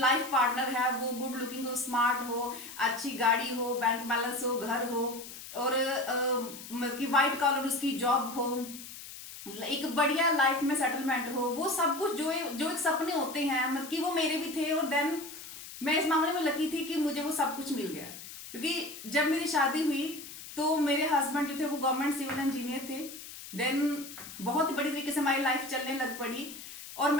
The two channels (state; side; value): noise; left; hiss, 13 dB below the sound